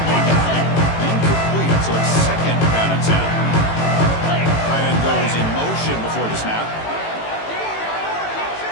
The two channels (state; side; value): late; right; 18 ms